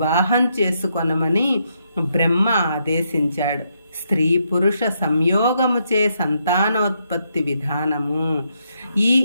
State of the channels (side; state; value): both; inverted; correlation -0.78